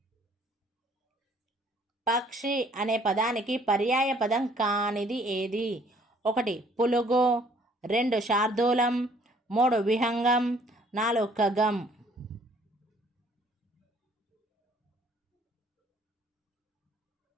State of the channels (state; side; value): normal; both; correlation 0.60